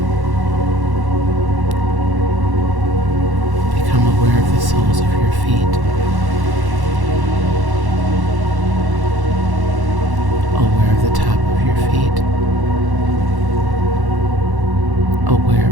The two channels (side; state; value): left; late; 1.1 ms